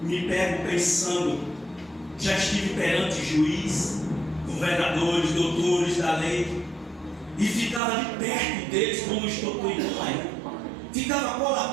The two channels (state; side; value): drops out; left; at 7.8 s